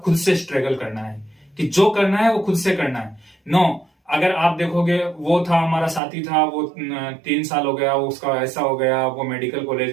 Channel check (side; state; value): left; drops out; at 6.0 s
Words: खुद से स्ट्रगल करना है कि जो करना है वो खुद से करना है। नो, अगर आप देखोगे वो था हमारा साथी था, वो 3 साल हो गया, उसका ऐसा हो गया, वो मेडिकल